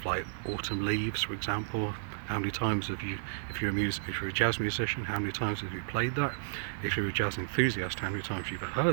like Autumn Leaves, for example. How many times have you, if you're a jazz musician, how many times have you played that? If you're a jazz enthusiast, how many times have you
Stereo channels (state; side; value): silent; left; digital silence